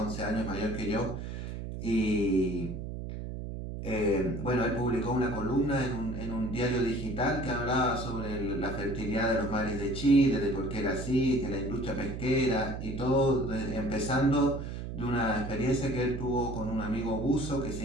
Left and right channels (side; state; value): right; noise; hum, 6 dB below the sound